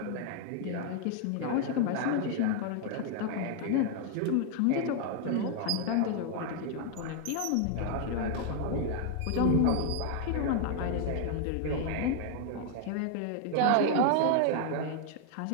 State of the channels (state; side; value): different; both; correlation 0.00